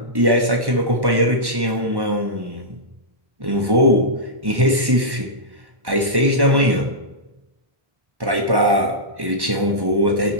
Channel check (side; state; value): left; late; 1.1 ms